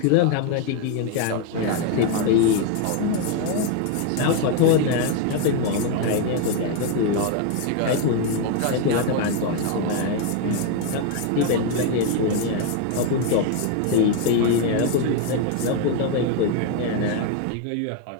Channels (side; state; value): both; different; correlation 0.01